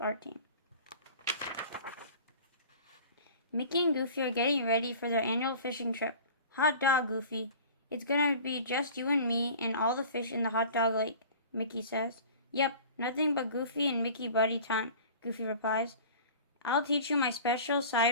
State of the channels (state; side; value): inverted; both; correlation -0.42